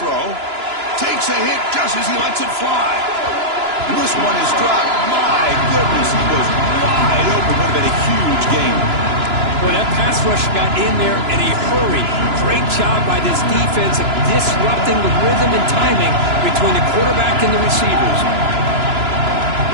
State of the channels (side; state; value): left; late; 2.9 ms